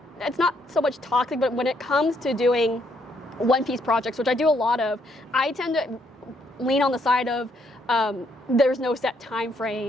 it's not so much toxic, but when it comes to doing One Piece projects, which I do a lot of, I tend to lean on the side of there's no set time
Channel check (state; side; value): normal; both; correlation 0.72